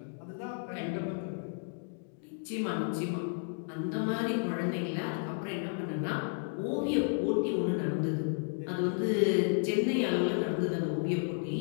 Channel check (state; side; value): silent; right; 56 dB below the other